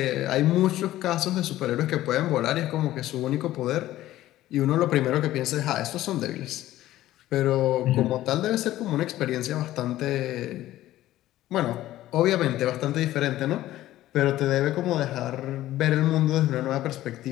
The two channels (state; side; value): quieter; right; 14.7 dB